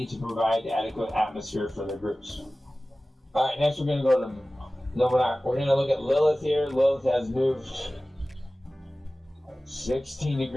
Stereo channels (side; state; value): both; normal; correlation 0.97